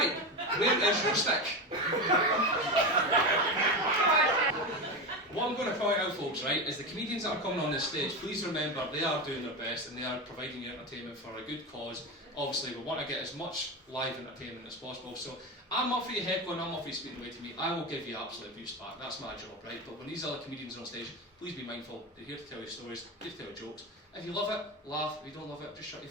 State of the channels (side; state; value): both; normal; correlation 0.19